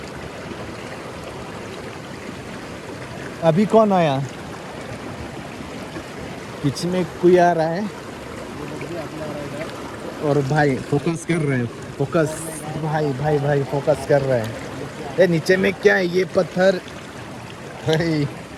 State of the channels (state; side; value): identical; both; correlation 1.00